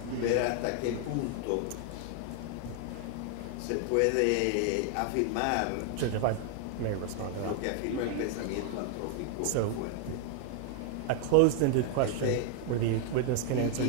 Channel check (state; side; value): different; both; correlation 0.00